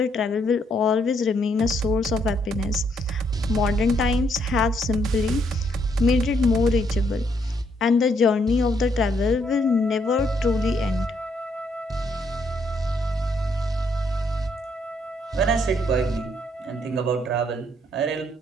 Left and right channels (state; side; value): normal; both; correlation 0.73